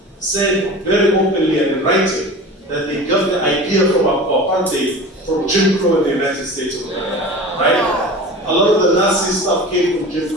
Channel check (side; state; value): both; normal; correlation 0.36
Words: said very openly and in writing that they got the idea from apartheid from Jim Crow in the United States of America, right? A lot of the Nazi stuff came from Jim